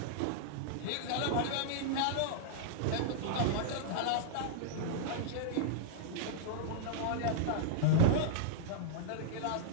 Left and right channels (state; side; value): different; both; correlation -0.01